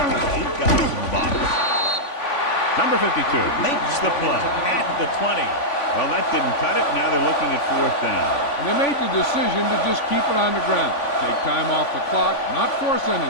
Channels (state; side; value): late; right; 3.5 ms